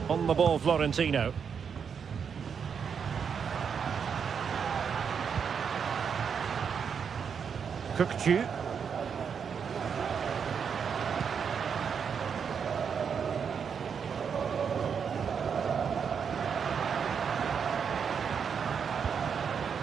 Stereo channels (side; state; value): left; quieter; 6.8 dB